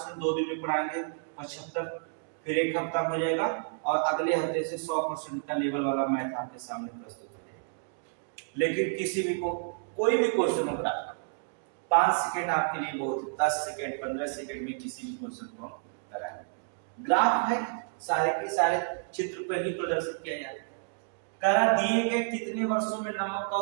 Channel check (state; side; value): silent; left; digital silence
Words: 2 दिन में पढ़ाएंगे, 75 फिर एक हफ्ता हो जाएगा, और अगले हफ्ते से 100% का लेवल वाला मैथ आपके सामने प्रस्तुत हो जाएगा। लेकिन किसी भी को कोई भी क्वेश्चन हो रहा 5 सेकंड आपके लिए बहुत है, 10 सेकंड 15 सेकंड में किसी भी क्वेश्चन को कराएं। ग्राफ है, सारे के सारे चित्र पर ही प्रदर्शित किया जाता है। करा दिए गए कितने वर्षों में नमक का